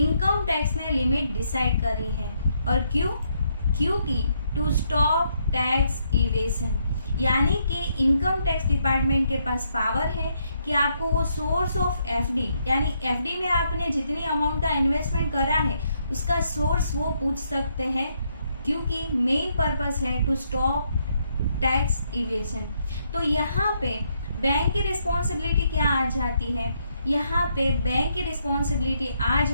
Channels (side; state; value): both; inverted; correlation -0.75